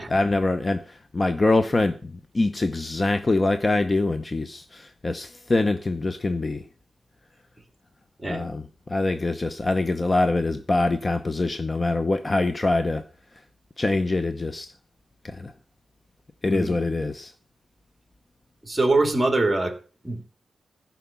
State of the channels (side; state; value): both; normal; correlation 0.95